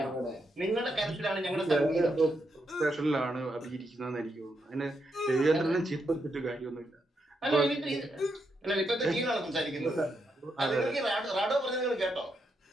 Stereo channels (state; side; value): normal; both; correlation 0.81